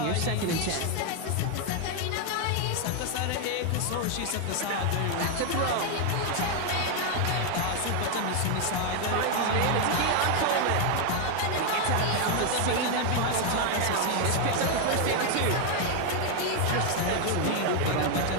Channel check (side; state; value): both; different; correlation 0.01